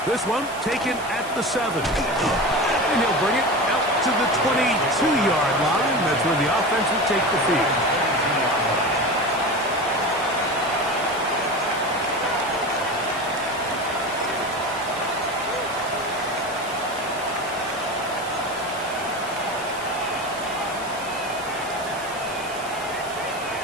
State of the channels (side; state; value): right; noise; hiss, 16 dB below the sound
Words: This one taken at the 7. And he'll bring it out to the 22-yard line. That's where the offense will take the field.